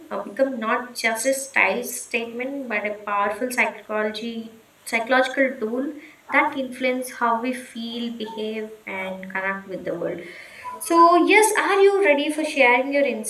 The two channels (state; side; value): identical; both; correlation 1.00